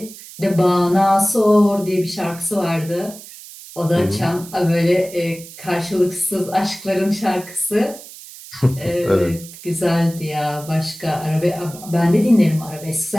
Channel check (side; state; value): right; noise; hiss, 16 dB below the sound